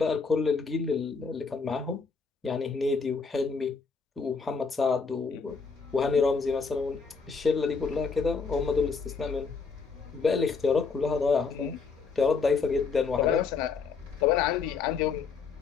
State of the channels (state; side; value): quieter; right; 5.1 dB